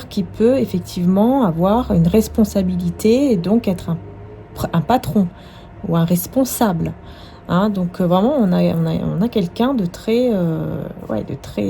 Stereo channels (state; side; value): identical; both; correlation 1.00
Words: qu'il peut effectivement avoir une responsabilité et donc être un patron ou un responsable. Hein. Donc vraiment, on a quelqu'un de très,